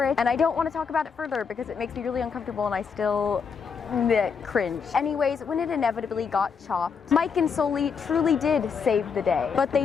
it. And I don't want to talk about it further because it makes me really uncomfortable and I still cringe. Anyways, when it inevitably got chopped, Mike and Sully truly did save the day, but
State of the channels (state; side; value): quieter; right; 6.1 dB